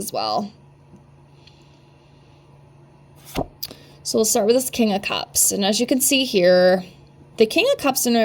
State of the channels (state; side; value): identical; both; correlation 1.00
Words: well. So we'll start with this King of Cups. And as you can see here, the King of Cups in